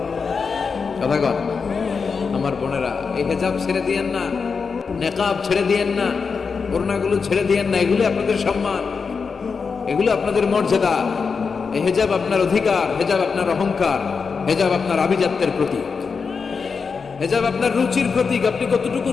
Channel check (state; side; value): quieter; right; 5.3 dB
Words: কথা কন আমার বোনেরা, এই হিজাব ছেড়ে দিয়েন না, নেকাব ছেড়ে দিয়েন না, ওড়নাগুলো ছেড়ে দিয়েন না। এগুলো আপনাদের সম্মান, এগুলো আপনাদের মর্যাদা। এই হিজাব আপনার অধিকার, হিজাব আপনার অহংকার, হিজাব আপনার আভিজাত্যের প্রতীক, হিজাব আপনার রুচির প্রতীক। আপনি কতটুকু